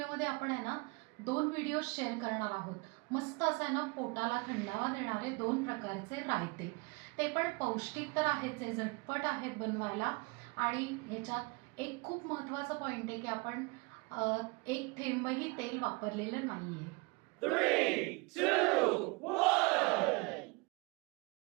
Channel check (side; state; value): left; quieter; 29.1 dB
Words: आपण आहे ना 2 व्हिडिओ शेअर करणार आहोत. मस्त असं आहे ना पोटाला थंडावा देणारे 2 प्रकारचे रायते. ते पण पौष्टिक तर आहेच आहे, झटपट आहेत बनवायला आणि ह्याच्यात एक खूप महत्त्वाचं पॉईंट आहे की आपण एक थेंबही तेल वापरलेलं नाहीये. 3, 2, 1.